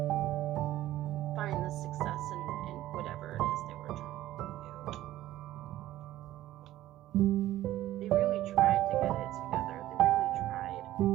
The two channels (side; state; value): left; quieter; 14.4 dB